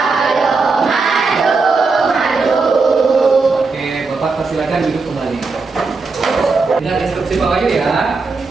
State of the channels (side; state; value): left; quieter; 4.2 dB